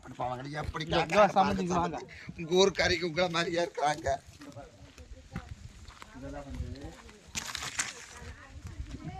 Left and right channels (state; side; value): identical; both; correlation 1.00